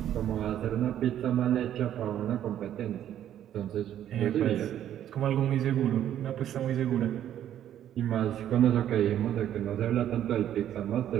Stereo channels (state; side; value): quieter; left; 11.0 dB